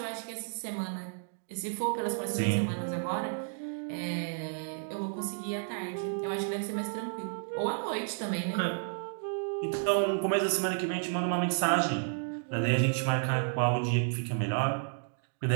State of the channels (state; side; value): silent; left; digital silence